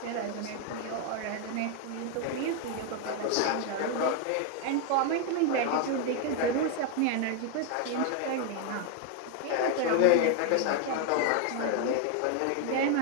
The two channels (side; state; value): both; different; correlation 0.00